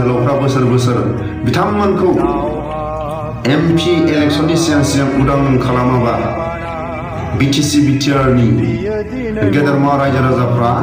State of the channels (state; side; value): identical; both; correlation 1.00